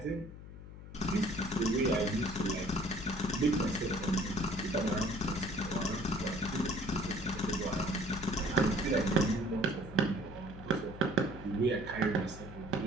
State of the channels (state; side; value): noise; left; hum, 14 dB below the sound